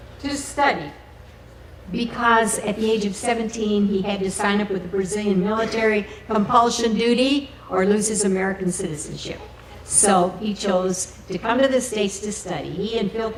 to study, because at the age of 17, he had to sign up with the Brazilian military compulsion duty or lose his American citizenship. So he chose to come to the States to study. He and Phil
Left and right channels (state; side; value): identical; both; correlation 1.00